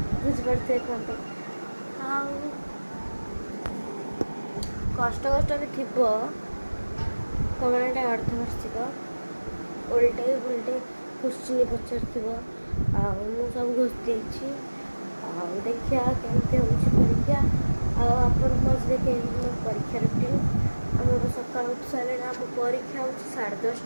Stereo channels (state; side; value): inverted; both; correlation -1.00